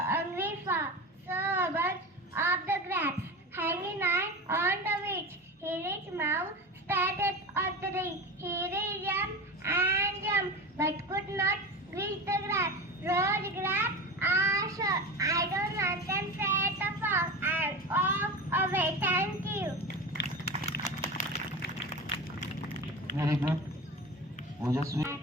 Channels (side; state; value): both; normal; correlation 0.28